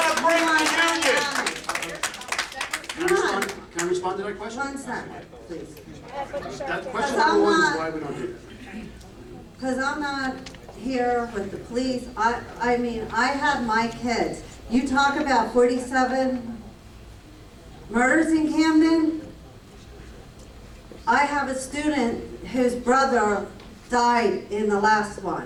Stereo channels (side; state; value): both; identical; correlation 1.00